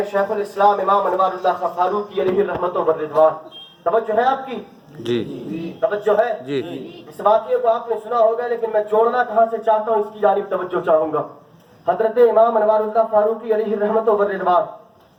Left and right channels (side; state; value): both; identical; correlation 1.00